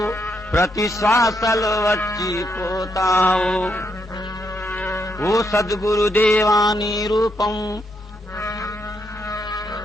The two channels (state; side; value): normal; both; correlation 0.78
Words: ప్రతి శ్వాసలో వచ్చి పోతావు. ఓ సద్గురుదేవాని రూపం,